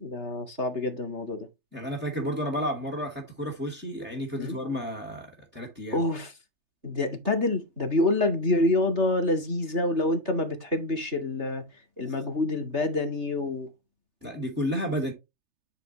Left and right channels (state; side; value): late; left; 3.3 ms